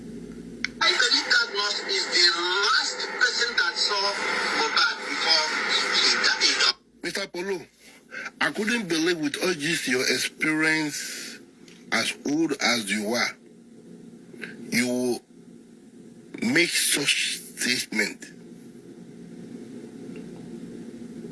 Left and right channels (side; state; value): both; identical; correlation 1.00